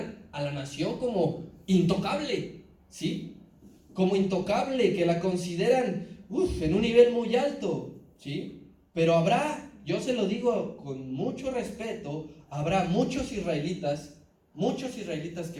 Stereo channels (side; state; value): both; identical; correlation 1.00